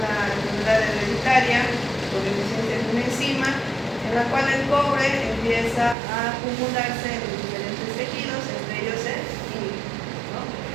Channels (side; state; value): left; drops out; at 6.0 s